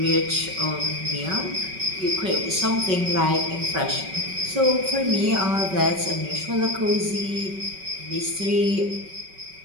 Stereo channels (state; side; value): late; left; 5.3 ms